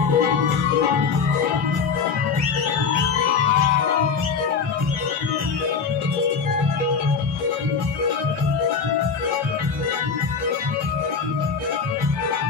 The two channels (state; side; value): quieter; right; 5.6 dB